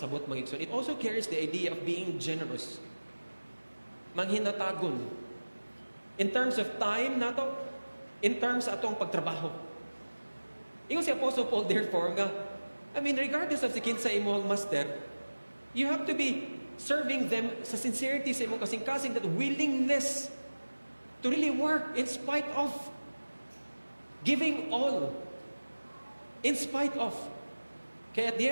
mga igsoon. It also carries the idea of being generous. Manghinatagon. In terms of time nato, in terms atong pagtrabaho. Ingon si Apostle Paul, therefore, nga, I mean, regardless of si kinsa imong master, you have to be serving them sa sincerity sa imong kasing-kasing, that willingness to really work in spite of, giving all, in spite of. Kaya at the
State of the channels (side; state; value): both; inverted; correlation -1.00